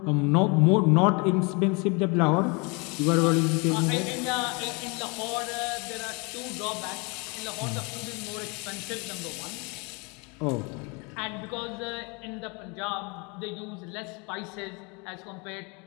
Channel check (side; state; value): right; quieter; 30.7 dB